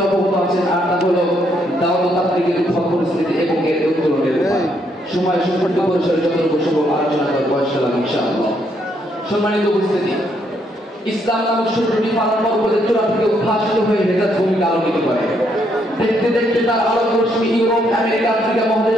অবগত আছেন, আর তা হলো দাওয়াত তাবলীগের উদ্ভব পরিস্থিতি এবং এর উত্তরণের উপায়। সময় সংক্ষিপ্ত পরিসরে যতটুকু সম্ভব আলোচনা করব ইনশাআল্লাহ। সম্মানিত উপস্থিতি, ইসলাম নামক শব্দটি পালন পর্বতের চূড়া থেকে উদ্ভাসিত হয়ে হেজাজ ভূমিকে আলোকিত করে। দেখতে দেখতে তার আলোক রশ্মি ইউরোপ, আমেরিকা, আফ্রিকা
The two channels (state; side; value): normal; both; correlation 0.73